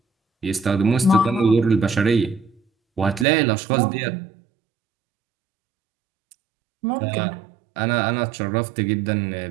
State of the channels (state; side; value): drops out; left; at 3.2 s